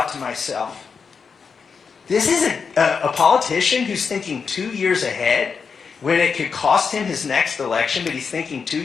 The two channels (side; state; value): right; quieter; 5.7 dB